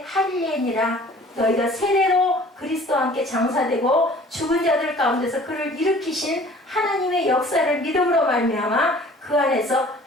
할례니라. 너희가 세례로 그리스도와 함께 장사되고 죽은 자들 가운데서 그를 일으키신 하나님의 역사를 믿음으로 말미암아 그 안에서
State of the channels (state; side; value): normal; both; correlation 0.50